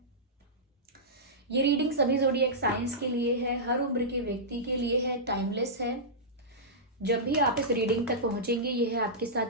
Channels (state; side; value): normal; both; correlation -0.14